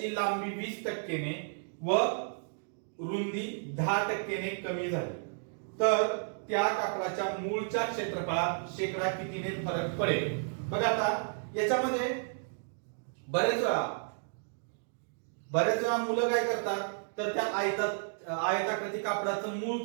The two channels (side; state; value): left; silent; digital silence